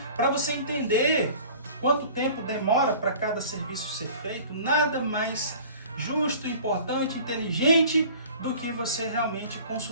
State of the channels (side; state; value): both; inverted; correlation -0.45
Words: para você entender quanto tempo demora para cada serviço ser feito, nada mais justo, importante, inteligente do que você realmente